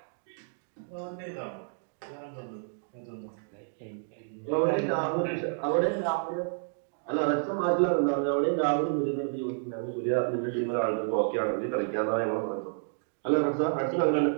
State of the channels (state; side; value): silent; left; digital silence